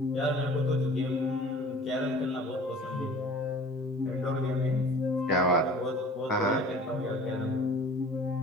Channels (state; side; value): normal; both; correlation 0.45